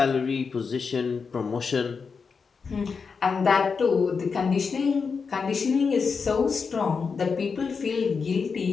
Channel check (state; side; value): quieter; right; 5.4 dB